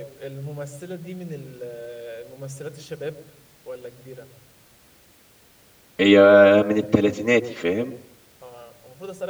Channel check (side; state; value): both; identical; correlation 1.00